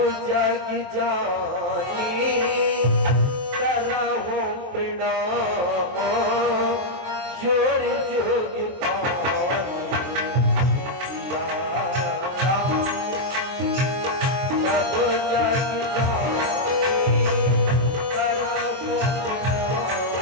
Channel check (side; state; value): left; late; 23 ms